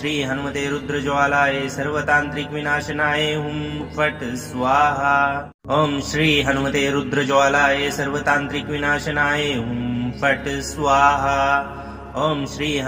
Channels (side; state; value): both; identical; correlation 1.00